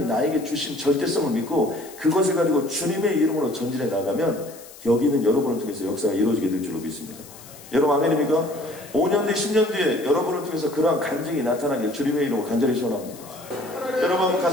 나에게 주신 절대성을 믿고 그것을 가지고 주님의 이름으로 전진해 나가면 여기는 여러분을 통해서 역사가 이루어지게 될 줄로 믿습니다. 여러분 아멘입니까? 5년 뒤 10년 뒤에 여러분을 통해서 그러한 간증이 나타나길 주님의 이름으로 간절히 소원합니다. 여러분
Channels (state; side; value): noise; left; hiss, 19 dB below the sound